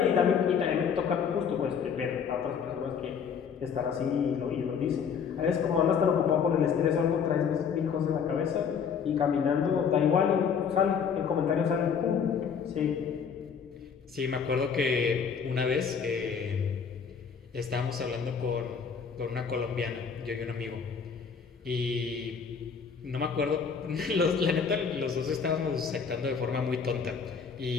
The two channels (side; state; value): right; quieter; 6.6 dB